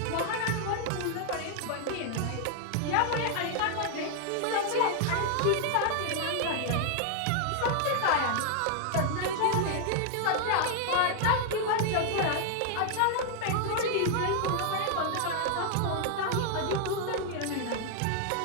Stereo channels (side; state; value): both; different; correlation 0.00